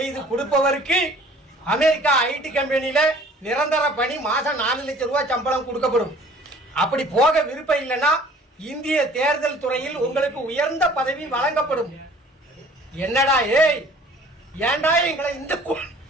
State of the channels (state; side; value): normal; both; correlation 0.51